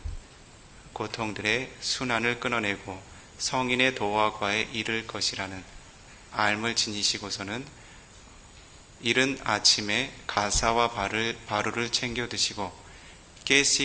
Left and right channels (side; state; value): both; identical; correlation 1.00